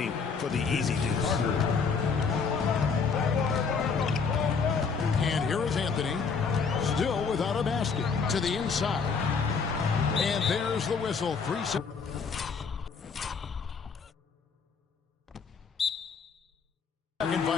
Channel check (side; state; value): right; quieter; 5.4 dB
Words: for the easy deuce. And here is Anthony, still without a basket, to the inside. And there's the whistle. 3 seconds. Second